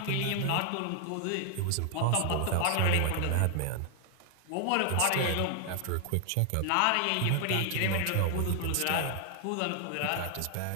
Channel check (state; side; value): different; both; correlation 0.00